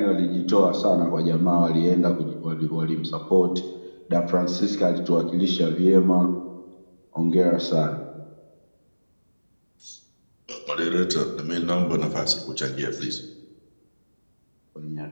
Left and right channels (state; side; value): inverted; both; correlation -1.00